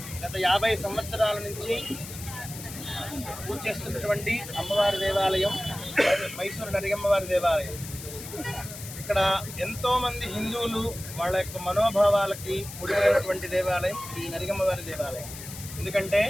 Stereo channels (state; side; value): noise; left; hiss, 12 dB below the sound